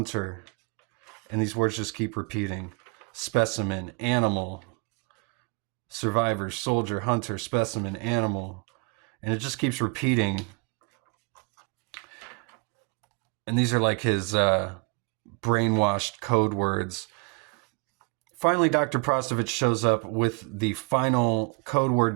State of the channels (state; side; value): quieter; left; 31.3 dB